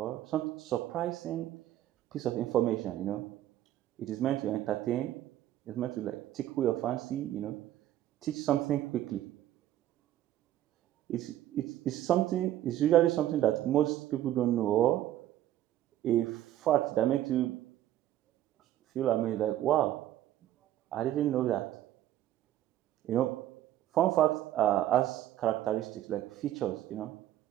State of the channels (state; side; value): quieter; left; 13.0 dB